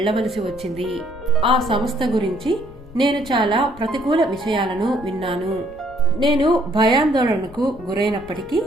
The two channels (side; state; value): left; noise; rumble, 20 dB below the sound